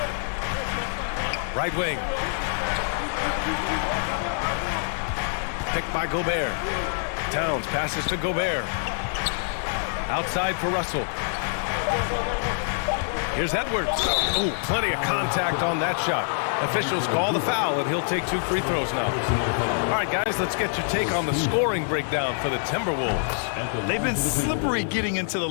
Right wing. Picked by Gobert. Towns passes to Gobert. Outside for Russell. Here's Edwards. Oh, plenty of contact on that shot. Officials call the foul, and he'll take 2 free throws now. All right, guys, let's get your take on the scoring breakdown for the Timberwolves. They've been slippery getting into the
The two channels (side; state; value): right; silent; 61 dB below the other